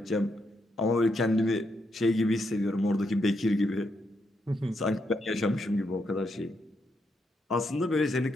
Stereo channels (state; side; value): normal; both; correlation 0.80